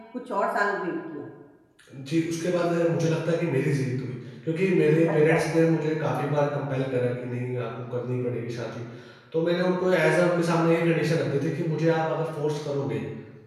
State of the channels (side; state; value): both; identical; correlation 1.00